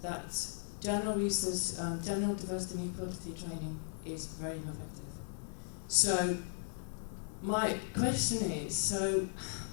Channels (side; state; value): right; silent; 53 dB below the other